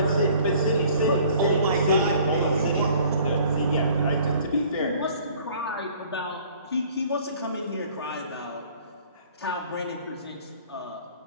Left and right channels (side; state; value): both; inverted; correlation -0.53